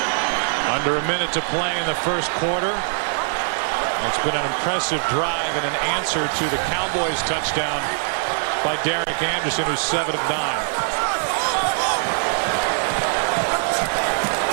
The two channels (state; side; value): silent; left; 64 dB below the other